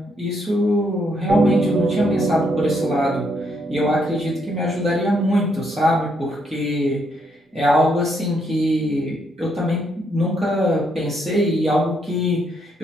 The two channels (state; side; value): normal; both; correlation 0.75